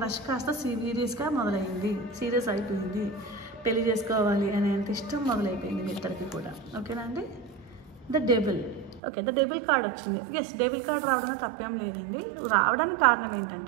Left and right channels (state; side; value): drops out; left; at 9.0 s